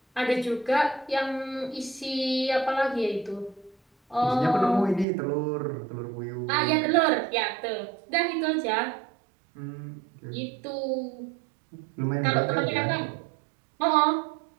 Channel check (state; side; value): drops out; left; at 5.1 s